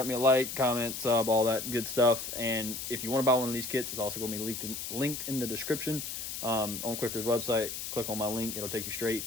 me a like, comment, sub, all that good stuff. And if you want to buy one of these kits, it's also going to be linked in the description on Quicker's website. Click on my link. It'll take you straight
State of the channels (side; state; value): left; noise; hiss, 6 dB below the sound